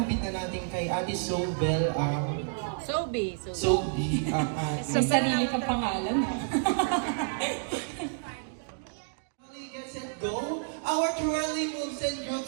na natin kay Ate Sobel ang... Sobi. Sobi ang Sa ating... sarili kang pangalan. Get set, go. Our twirly moves and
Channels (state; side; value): silent; left; digital silence